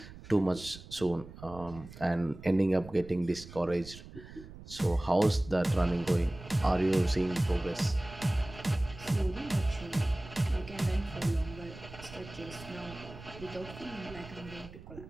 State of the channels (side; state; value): right; noise; rumble, 16 dB below the sound